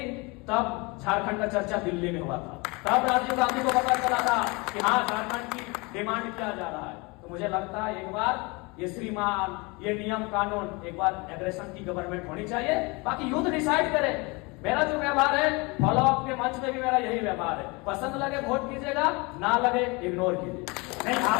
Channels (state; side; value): quieter; right; 27.0 dB